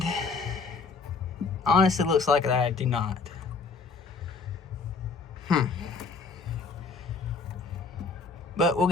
honestly, it looks like that I do not. But we'll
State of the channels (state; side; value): quieter; right; 4.6 dB